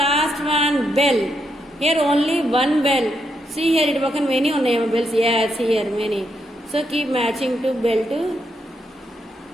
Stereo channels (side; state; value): both; normal; correlation 0.80